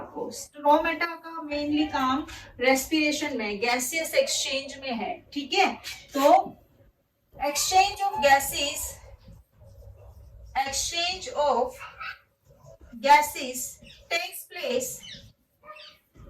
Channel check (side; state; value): both; identical; correlation 1.00